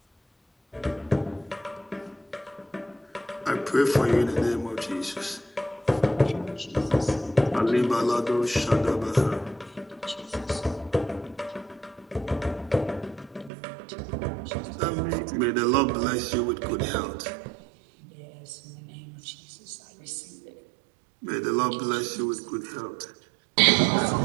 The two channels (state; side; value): drops out; left; at 13.5 s